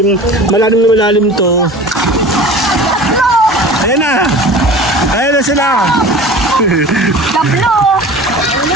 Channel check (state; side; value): normal; both; correlation 0.39